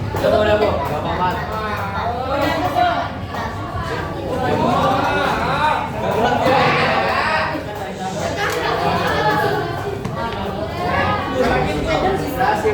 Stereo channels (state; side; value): identical; both; correlation 1.00